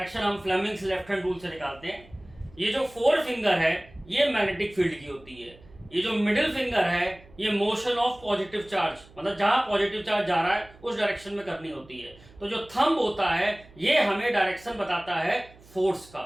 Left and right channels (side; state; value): right; noise; hum, 24 dB below the sound